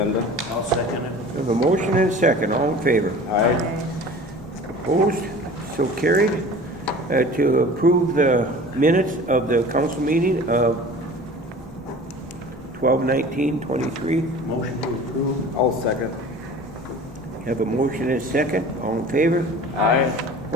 I'll second it. We have a motion and a second. All in favor? Aye. Opposed? So carried. To approve the minutes of the council meeting of 12/19/23. Motion to approve. I'll second. Have a motion and a second. All in favor? Aye.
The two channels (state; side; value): normal; both; correlation 0.41